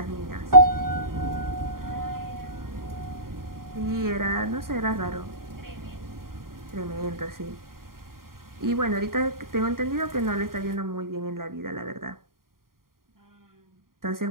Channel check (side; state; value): left; late; 0.91 ms